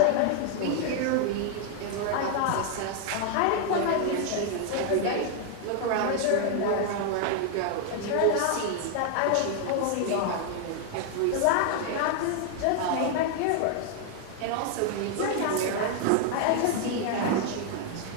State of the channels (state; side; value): different; both; correlation 0.00